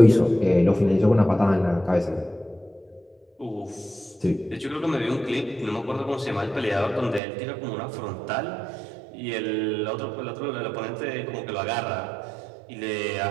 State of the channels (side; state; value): left; drops out; at 7.2 s